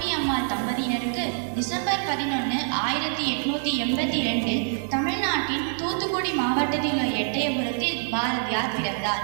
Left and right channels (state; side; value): silent; left; digital silence